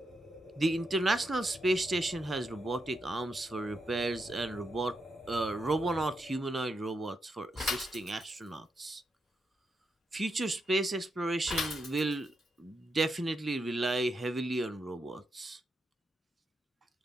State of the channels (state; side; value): normal; both; correlation 0.83